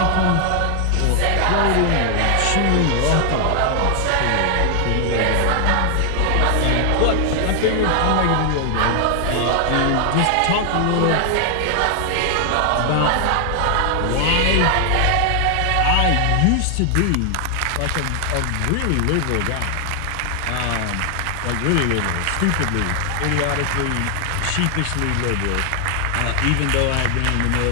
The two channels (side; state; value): both; different; correlation 0.00